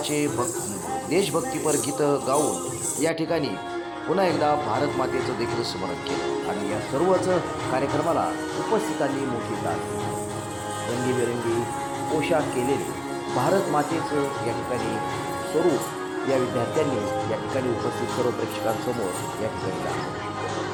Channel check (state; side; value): identical; both; correlation 1.00